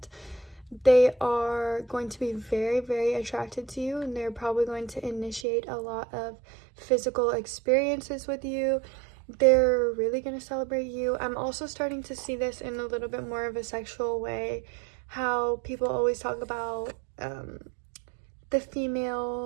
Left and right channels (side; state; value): left; drops out; at 5.5 s